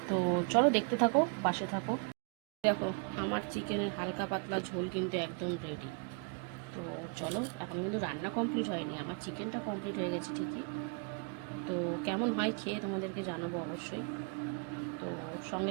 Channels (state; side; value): quieter; left; 32.9 dB